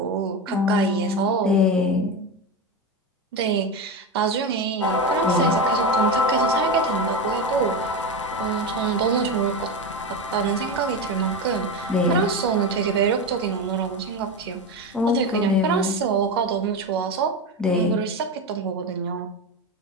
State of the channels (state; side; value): normal; both; correlation 0.18